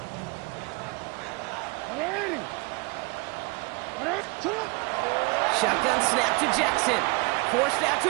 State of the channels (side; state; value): left; quieter; 27.6 dB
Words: Shotgun snap to Jackson. Forced out